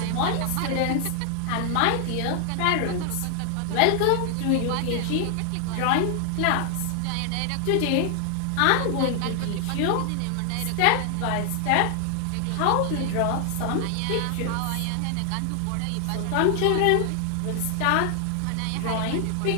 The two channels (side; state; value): both; different; correlation 0.00